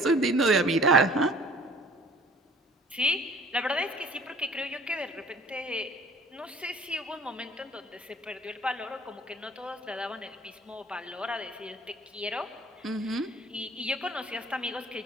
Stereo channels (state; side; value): normal; both; correlation 0.50